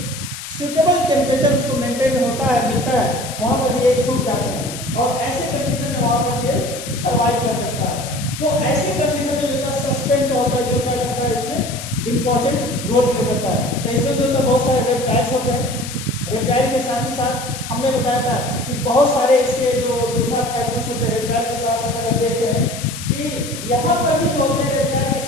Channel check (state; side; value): noise; left; hiss, 10 dB below the sound